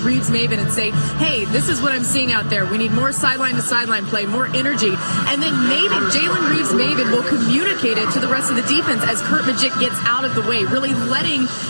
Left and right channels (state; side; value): inverted; both; correlation -1.00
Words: and say, hey, this is what I'm seeing out there. We need more sideline-to-sideline play, more energy. And then Jalen Reeves-Maybin will communicate it to the rest of the defense as Kurt Magint gets out of the way, really letting